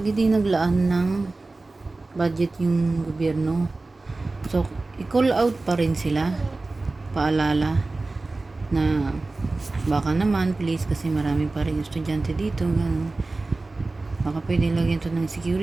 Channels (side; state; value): left; quieter; 3.3 dB